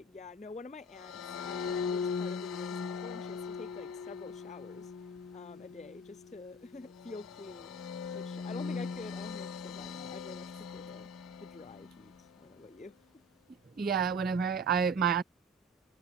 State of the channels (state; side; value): normal; both; correlation 0.37